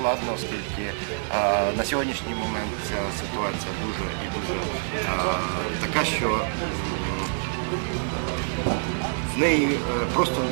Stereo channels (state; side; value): silent; left; 60 dB below the other